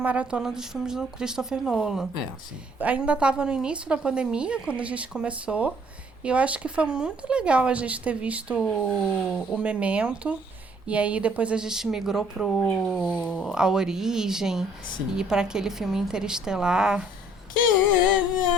dos filmes do Christopher Nolan. Sim. Ainda estava no início da pandemia, quando a gente começou, e eu acho que foi muito legal a gente ter visto o Memento, e aí depois a gente migrou A Origem, Sim. e para aquele filme Interestelar.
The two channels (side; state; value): both; normal; correlation 0.61